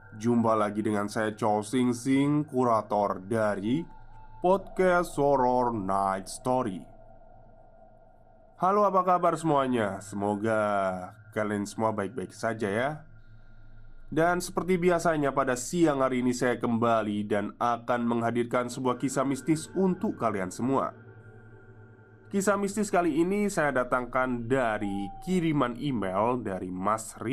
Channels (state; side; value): identical; both; correlation 1.00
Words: Jumpa lagi dengan saya Chow Sing Sing, kurator dari podcast Horror Night Story. Halo, apa kabar semuanya? Semoga kalian semua baik-baik saja ya. Dan seperti biasanya pada siang hari ini saya kembali dan akan menghadirkan sebuah kisah mistis untuk kalian semua. Kisah mistis kali ini saya datangkan dari kiriman email dari Mas